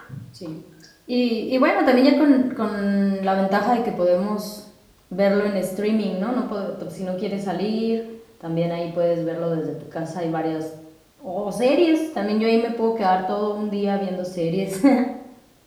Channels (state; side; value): identical; both; correlation 1.00